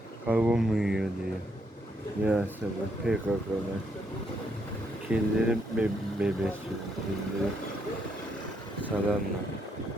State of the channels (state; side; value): normal; both; correlation 0.75